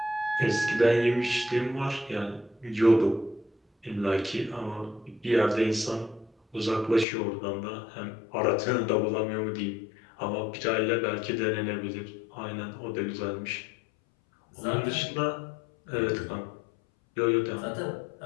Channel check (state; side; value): drops out; right; at 7.1 s